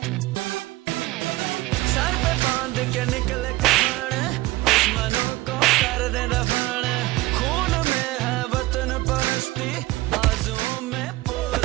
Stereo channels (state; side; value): quieter; left; 19.2 dB